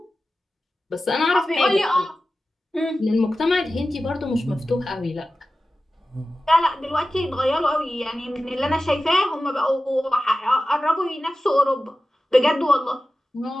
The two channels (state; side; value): normal; both; correlation 0.94